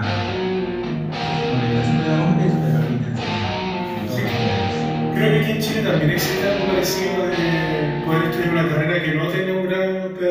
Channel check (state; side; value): identical; both; correlation 1.00